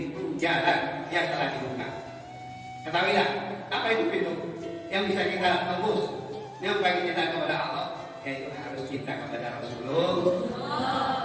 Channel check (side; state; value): both; identical; correlation 1.00